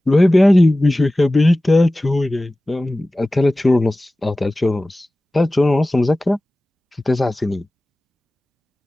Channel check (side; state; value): both; normal; correlation 0.97